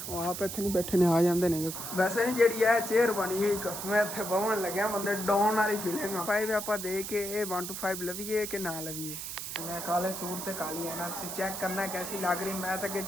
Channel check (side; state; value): right; noise; hiss, 7 dB below the sound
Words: ਉਹ ਆਪ ਇੱਥੇ ਨਹੀਂ ਬੈਠੇ ਨੇ, ਆ ਜਾਂਦੇ ਨੇ। ਵੈਸੇ ਨਹੀਂ ਜਿਹੜੀ ਇਹ ਚੇਅਰ ਬਣੀ ਹੋਈ ਮੈਂ ਇੱਥੇ ਬਵਣ ਲੱਗਿਆ, ਬੰਦੇ ਡਾਊਨ ਵਾਲੀ ਫੀਲਿੰਗ ਆ। 5 ਆਪਾਂ ਦੇ ਕੇ ਇਹ 1 to 5 ਲਵੀਏ ਕਿ ਨਾ ਲਵੀਏ। ਮੈਂ ਕਾਲੇ ਸੂਟ ਤੇ ਕਾਲੀ ਹੈ ना, ਤੁਸੀਂ ਚੈੱਕ करना कैसी लग रही। मैं तो